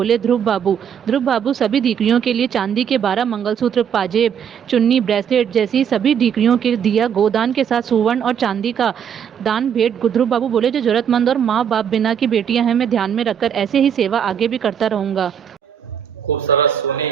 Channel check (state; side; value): quieter; left; 8.2 dB